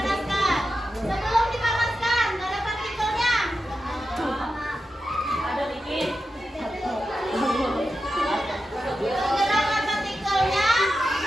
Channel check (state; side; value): normal; both; correlation 0.90